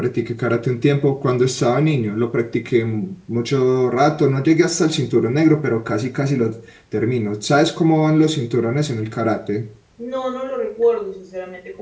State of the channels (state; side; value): identical; both; correlation 1.00